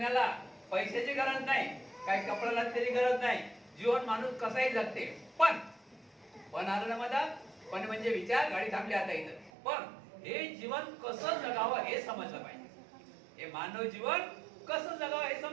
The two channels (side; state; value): left; drops out; at 9.5 s